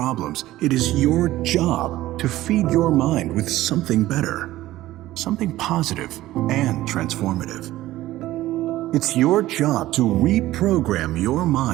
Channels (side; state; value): left; quieter; 15.7 dB